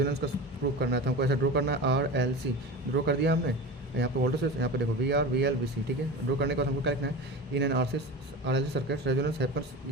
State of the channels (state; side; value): normal; both; correlation 0.29